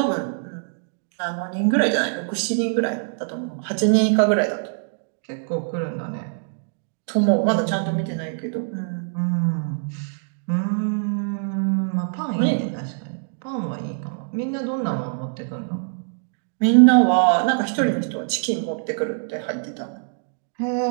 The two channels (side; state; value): left; silent; digital silence